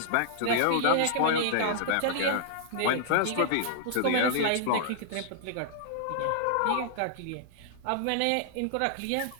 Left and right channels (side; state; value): both; different; correlation -0.01